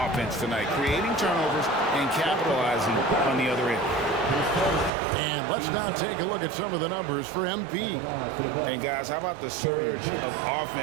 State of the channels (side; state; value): left; drops out; at 4.9 s